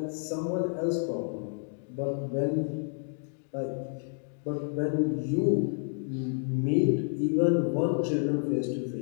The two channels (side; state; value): right; silent; 58 dB below the other